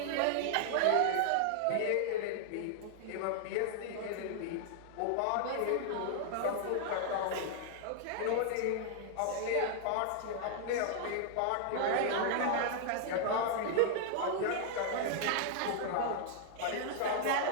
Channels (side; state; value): both; different; correlation -0.01